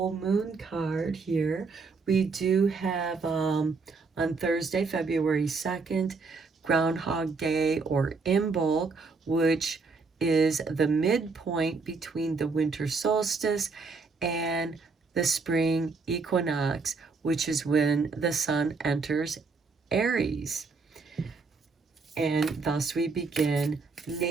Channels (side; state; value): left; quieter; 4.4 dB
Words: moon card here. We do have on Thursday, February 2nd, Groundhog Day or Imbolc, which is the midpoint between the winter solstice and the spring equinox, which is when the sun enters Aries. And thus we begin